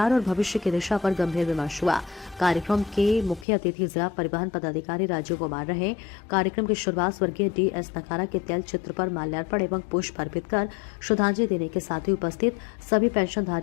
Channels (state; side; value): drops out; right; at 3.5 s